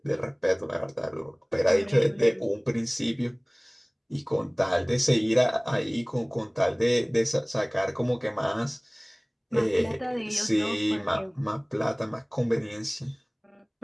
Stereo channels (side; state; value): both; identical; correlation 1.00